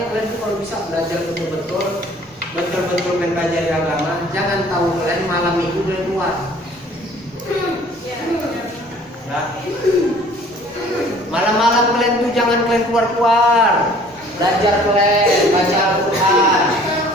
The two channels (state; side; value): normal; both; correlation 0.53